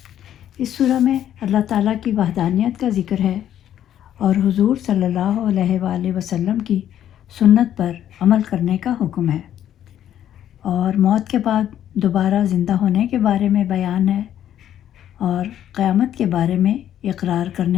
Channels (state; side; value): quieter; right; 10.9 dB